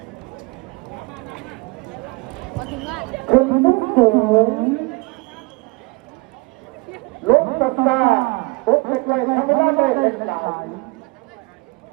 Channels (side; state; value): left; quieter; 26.5 dB